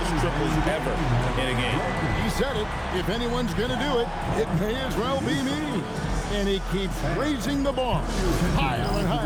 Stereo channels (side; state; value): both; identical; correlation 1.00